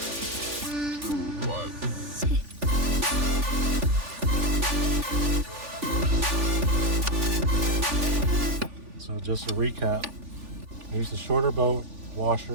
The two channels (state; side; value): late; left; 3.4 ms